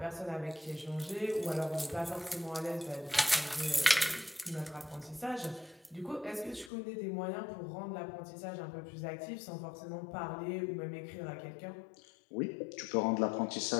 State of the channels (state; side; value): drops out; right; at 6.7 s